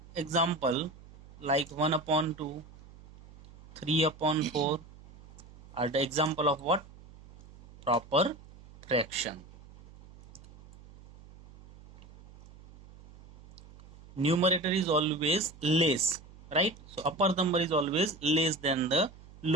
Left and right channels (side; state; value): right; noise; hum, 21 dB below the sound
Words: example like 1 upon 2, 3 upon 4 are the example of what? Proper fraction. Numerator is always less, right? So upper number is always less than the